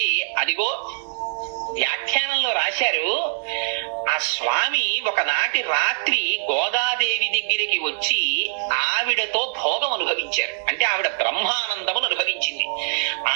అదిగో వ్యాఖ్యానంలో రాశారు, ఆ స్వామి ఒకనాటి రాత్రి గోదాదేవి దగ్గరికి వచ్చి ఆవిడతో భోగం అనుభవించారు. అంటే ఆవిడ బ్రహ్మానందమును అనుభవించింది.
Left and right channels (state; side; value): silent; left; digital silence